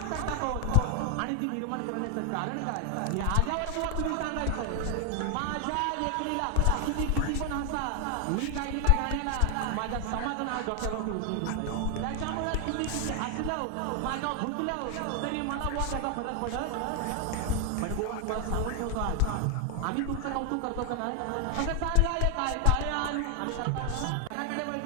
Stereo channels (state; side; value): different; both; correlation 0.00